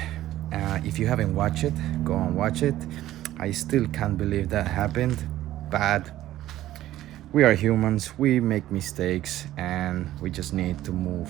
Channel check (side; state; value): left; quieter; 14.2 dB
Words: If you haven't watched it, go and watch it. I still can't believe that happened, but we are humans, we make mistakes, and we just need to move